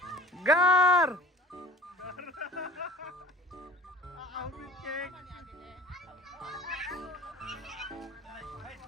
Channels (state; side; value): normal; both; correlation 0.45